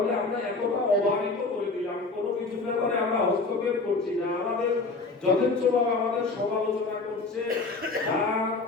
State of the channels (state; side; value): quieter; right; 3.7 dB